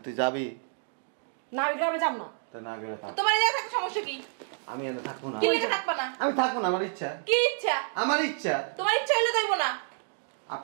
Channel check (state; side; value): silent; left; digital silence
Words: তুই যাবি? না, আমি গ্রামে যাব না। তো না গেলে থাক। তোমার যা থাকে সমস্যা কি? আমি এনে থাকবো না। কি লিখে থাকবা না? আমি থাকবো না, আমার ইচ্ছা। কি ইচ্ছা? আমার ইচ্ছা। তোমার ইচ্ছা হইলে দইব না।